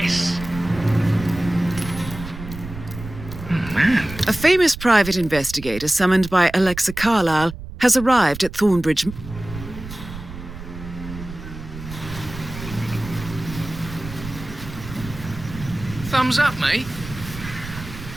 A famous private investigator summoned by Alexa Carlyle has arrived at Thornbridge. Thumbs up, mate.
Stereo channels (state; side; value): noise; right; rumble, 12 dB below the sound